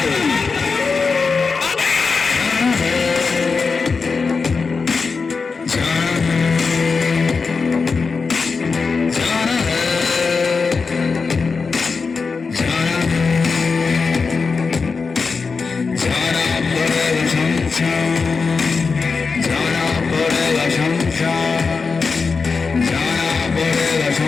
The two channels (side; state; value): right; quieter; 4.8 dB